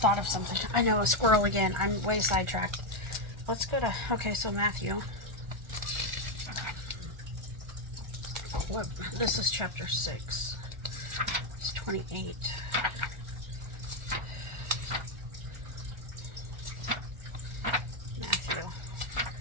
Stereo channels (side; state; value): left; late; 1.4 ms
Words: of something. I know, a squirrel again. I'm way sidetracked. Let's go to, okay, so Matthew. What, this is chapter 6. It's 28. Matthew.